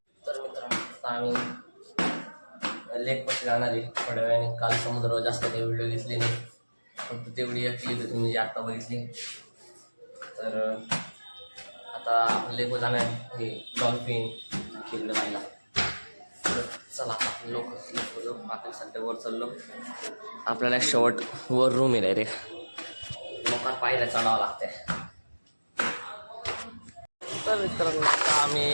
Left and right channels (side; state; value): both; inverted; correlation -1.00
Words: तर मित्रांनो आम्ही लेक पाशी जाणार आहे थोड्या वेळाने. काल समुद्रावर जास्त काही व्हिडिओ घेतली नाही, फक्त तेवढी एक क्लिप तुम्ही जी आत्ता बघितली. तर आता आपण लेकवर जाणार हे डॉल्फिन खेळलं पाहिला. तर चला आपण लोक आपण सध्या वर चाललो. आपल्याला शेवट वर रूम आहे रे, लोकांना पाहिलं चढावं लागतंय. तर मित्रांनो आता